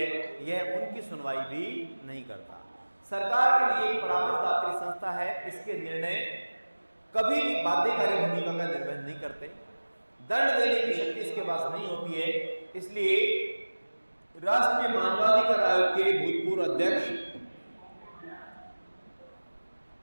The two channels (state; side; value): inverted; both; correlation -1.00